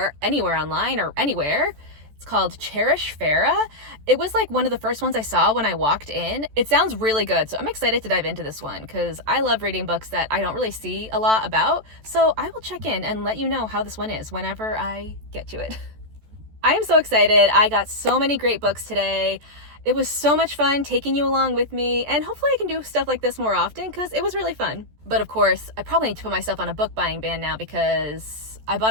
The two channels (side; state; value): left; late; 14 ms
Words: anywhere online or anywhere. It's called Cherish Farah. It was one of the first ones I saw when I walked in. It sounds really good, so I'm excited to dive into this one because I love reading books that I don't really see a lot about. So I will check in and let you know how this one is whenever I get to it. I am so excited. I got so many great books today. It was so much fun taking you along with me, and hopefully I can do stuff like this more often because it was really fun. But of course, I probably need to put myself on a book buying ban now because I